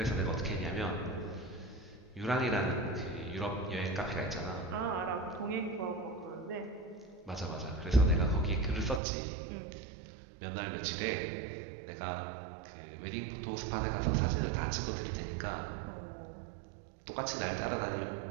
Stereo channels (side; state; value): left; drops out; at 9.0 s